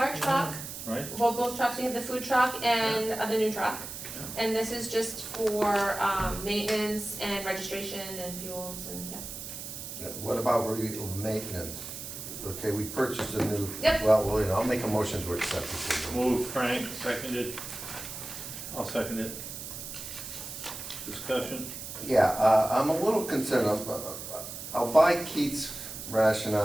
truck, Right? well, both trucks, we have the food truck and the new truck. And this is just for, maintenance and registration and fuels and, yeah. What about maintenance? Okay, we purchased a new. Yep. Well, you know, I'll make a motion to accept it. Moved, Frank, seconded. I'll second it. Discussion? Yeah, I'm a little concerned, I'll buy Keith's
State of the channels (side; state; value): right; noise; hiss, 9 dB below the sound